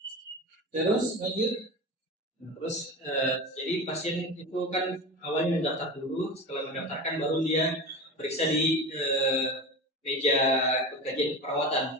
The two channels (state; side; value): normal; both; correlation 0.28